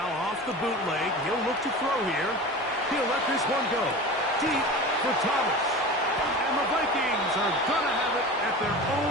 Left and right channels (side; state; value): both; normal; correlation 0.32